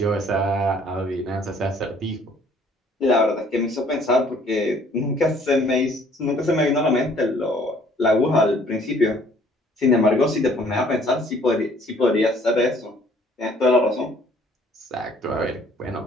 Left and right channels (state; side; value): normal; both; correlation 0.58